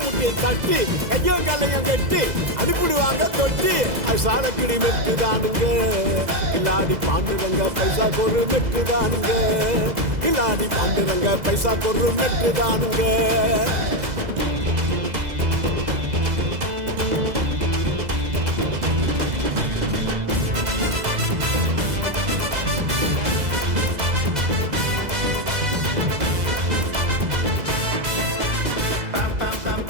தட்டி கையும் கல்லையும் கட்டி அனுப்பிடுவாங்க தொட்டி அது சாலக்கிடி மெட்டுதானுங்க கில்லாடி பாண்டுரங்க பைசா கொரு மெட்டுதானுங்க கில்லாடி பாண்டுரங்க பைசா கொரு மெட்டுதானுங்க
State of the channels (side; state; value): left; late; 2.0 ms